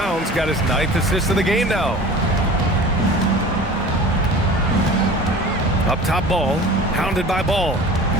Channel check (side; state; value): both; normal; correlation 0.40